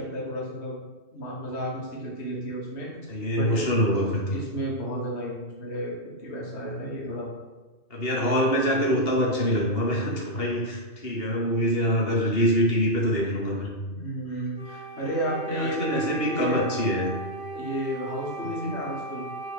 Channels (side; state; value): right; late; 2.8 ms